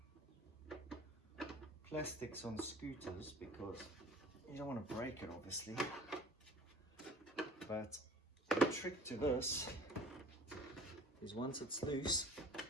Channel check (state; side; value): normal; both; correlation 0.47